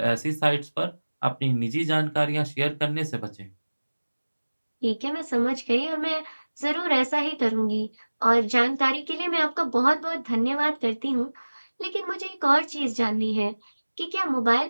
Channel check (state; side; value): inverted; both; correlation -1.00